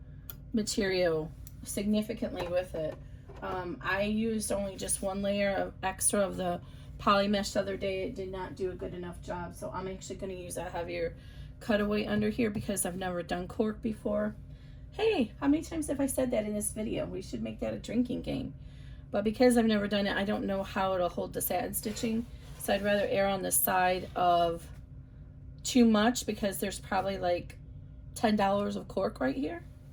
material significantly with it. I used only just one layer of extra of the poly mesh the other day. It did not do a good enough job, so I'm actually going to use a heavier cutaway under here because I've never done cork before. Hey, how many times have I said that in this video? We should make that a drinking game. But because I've never done it, I don't know how it'll hold the satin stitching, so I'd rather err on the side of too much because there's probably like $10 of cork right here.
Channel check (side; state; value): both; identical; correlation 1.00